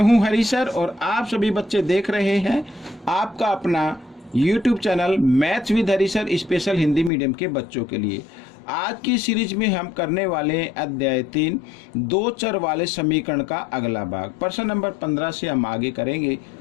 हरी सर और आप सभी बच्चे देख रहे हैं आपका अपना YouTube channel maths with Hari sir special Hindi medium के बच्चों के लिए। आज की सीरीज में हम करने वाले हैं अध्याय 3 दो चर वाले समीकरण का अगला भाग। प्रश्न नंबर 15 से हम आगे करेंगे।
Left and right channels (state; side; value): drops out; right; at 7.1 s